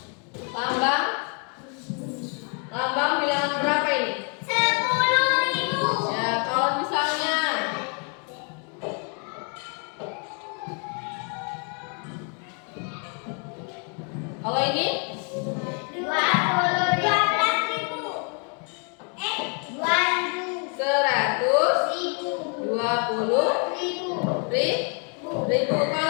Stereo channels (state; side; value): quieter; right; 38.8 dB